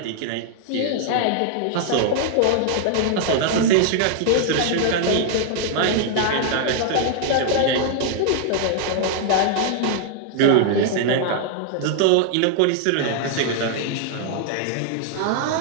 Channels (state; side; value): different; both; correlation 0.00